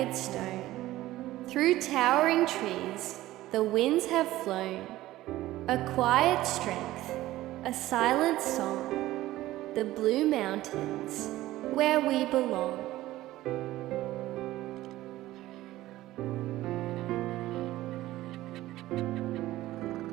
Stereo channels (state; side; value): quieter; left; 16.0 dB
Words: stone. Through towering trees, the winds have flown. A quiet strength, a silent song, the blue mountains, where we belong.